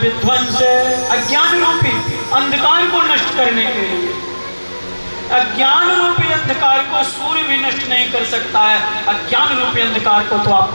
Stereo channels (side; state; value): both; inverted; correlation -1.00